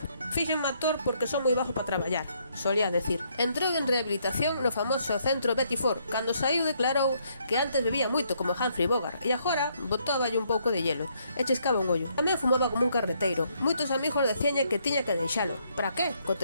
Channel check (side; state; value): both; inverted; correlation -0.71